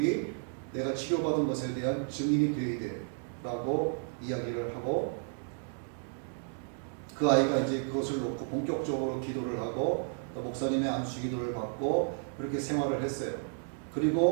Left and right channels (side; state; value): left; silent; 56 dB below the other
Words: 내가 치료받은 것에 대한 증인이 되어야 돼 라고 이야기를 하고, 그 아이가 이제 그것을 놓고 본격적으로 기도를 하고 목사님의 안수 기도를 받고 그렇게 생활을 했어요.